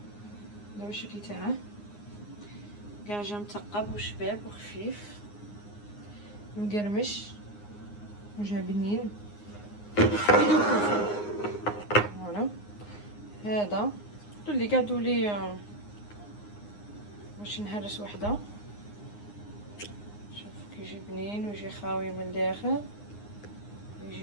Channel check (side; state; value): right; late; 9.7 ms